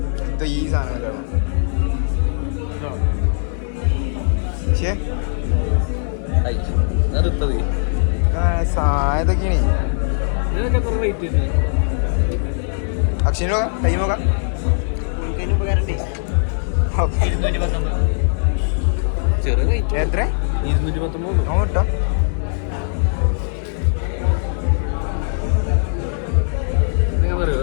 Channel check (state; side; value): silent; right; digital silence